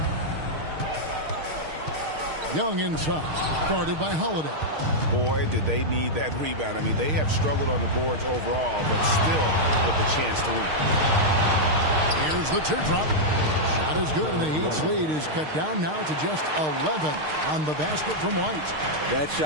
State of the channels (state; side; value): late; left; 6.5 ms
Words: Young inside, guarded by Holiday. Boy, did they need that rebound. I mean, they have struggled on the boards overall, but still with a chance to win. Here's the teardrop. Shot is good, and the Heat's lead is cut down now to just 11 on the basket from White. That